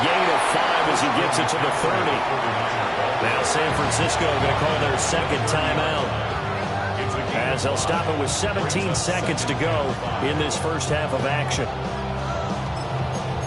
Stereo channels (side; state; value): both; identical; correlation 1.00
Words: gain of 5 as he gets it to the 30. Now San Francisco going to call their second timeout, as they'll stop it with 17 seconds to go in this first half of action.